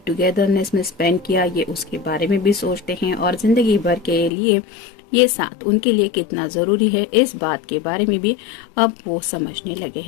टुगेदरनेस में स्पेंड किया, ये उसके बारे में भी सोचते हैं, और जिंदगी भर के लिए ये साथ उनके लिए कितना जरूरी है, इस बात के बारे में भी अब वो समझने लगे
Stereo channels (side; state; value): right; drops out; at 4.3 s